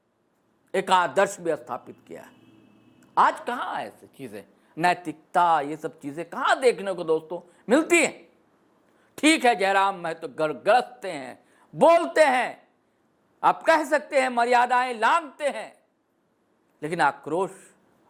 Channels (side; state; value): both; identical; correlation 1.00